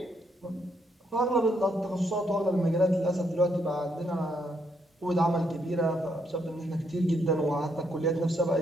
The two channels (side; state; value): both; normal; correlation 0.75